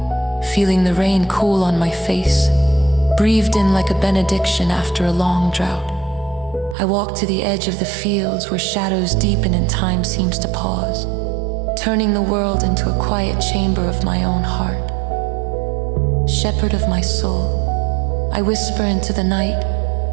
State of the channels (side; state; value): left; drops out; at 6.8 s